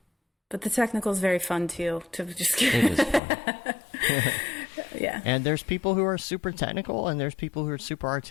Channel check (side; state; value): right; drops out; at 3.2 s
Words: But the technical is very fun too, to just It is fun. Yeah. And there's people who are super technical and there's people who are super